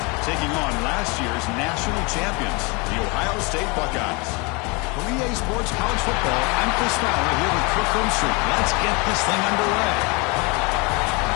taking on last year's national champions, the Ohio State Buckeyes. For EA Sports College Football, I'm Chris Fowler here with Kirk Herbstreit. Let's get this thing underway.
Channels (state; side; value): quieter; right; 29.1 dB